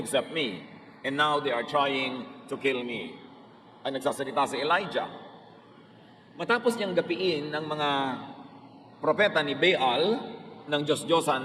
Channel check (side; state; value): both; identical; correlation 1.00